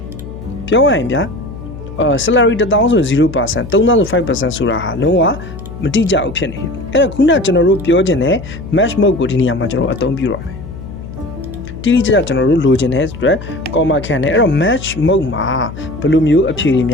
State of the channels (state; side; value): noise; left; hum, 12 dB below the sound